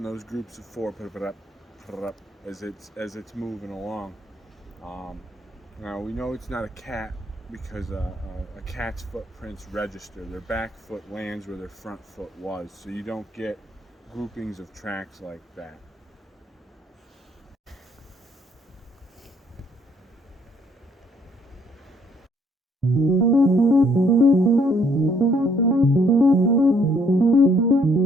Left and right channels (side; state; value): both; normal; correlation 0.66